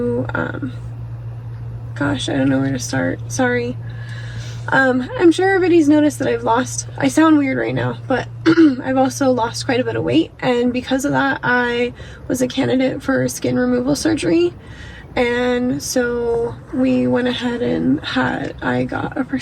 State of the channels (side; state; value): both; identical; correlation 1.00